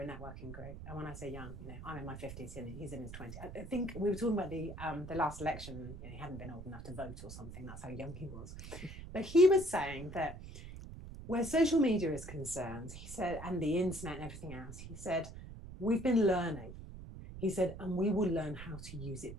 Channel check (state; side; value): noise; right; rumble, 11 dB below the sound